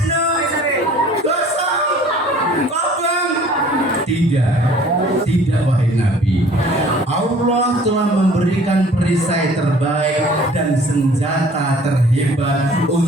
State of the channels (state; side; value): normal; both; correlation 0.52